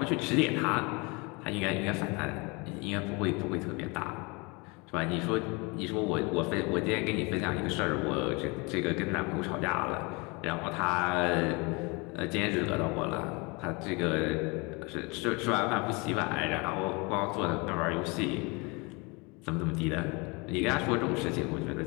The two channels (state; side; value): quieter; right; 28.1 dB